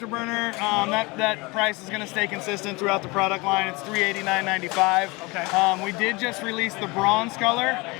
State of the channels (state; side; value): quieter; right; 25.1 dB